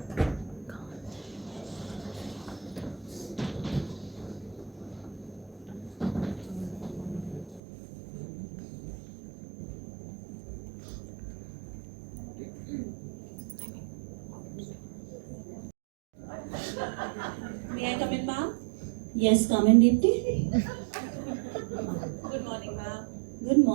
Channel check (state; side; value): drops out; left; at 7.6 s